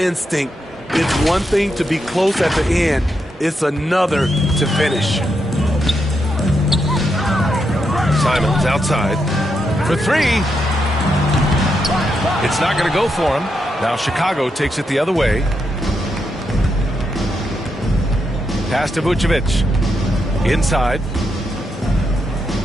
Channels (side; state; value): both; normal; correlation 0.82